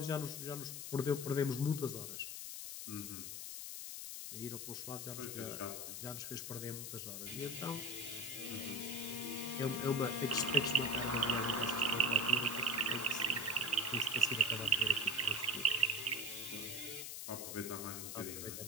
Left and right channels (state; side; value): noise; left; hiss, 6 dB below the sound